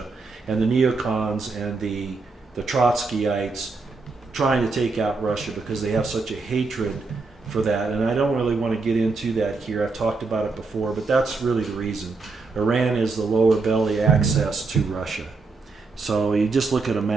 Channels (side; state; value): left; quieter; 4.0 dB